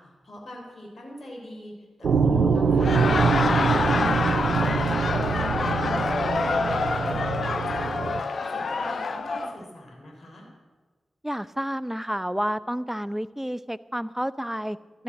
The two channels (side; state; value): both; normal; correlation 0.81